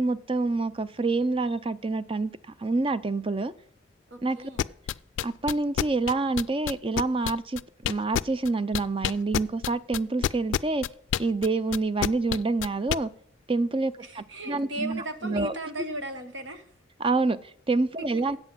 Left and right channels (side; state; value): both; normal; correlation 0.60